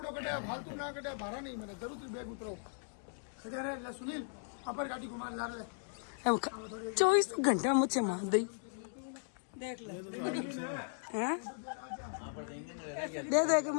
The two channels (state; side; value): silent; right; digital silence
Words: कटे फालतू ना कटे भाड़ा नहीं मैंने जरूर बैग उतरो। सुनील अपर गाड़ी घुमा ला रहे 24 घंटा मुझे मार दी। देख ले दे दे के